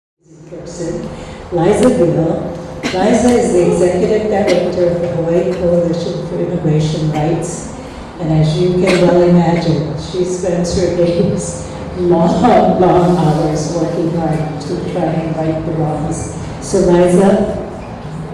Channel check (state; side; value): identical; both; correlation 1.00